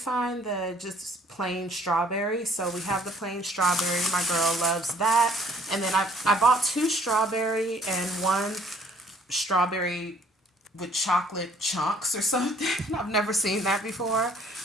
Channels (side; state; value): both; normal; correlation 0.60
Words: the just plain strawberry, so we have the plain strawberry. My girl loves that. And then I bought 2 strawberry and 1 strawberry with chocolate chunks or something. I've never seen that before.